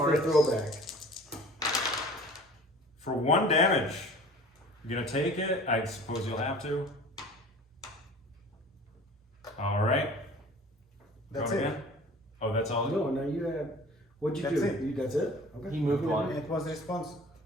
throwback. For 1 damage, you're gonna take it. I suppose you'll have to. All right. That's Going it. again. Oh, that's all. No, no, you have. What'd you That's do? it. That's it. Okay. He moved one. It was response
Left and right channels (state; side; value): normal; both; correlation 0.44